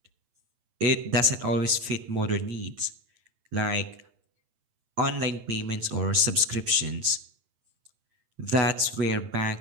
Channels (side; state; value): left; late; 8.8 ms